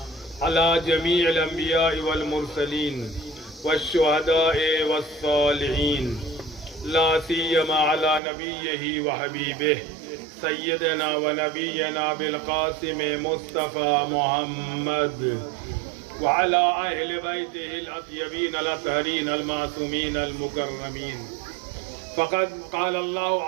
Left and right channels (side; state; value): left; drops out; at 8.2 s